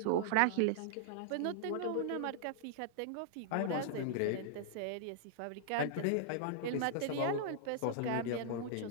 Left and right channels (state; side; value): different; both; correlation -0.01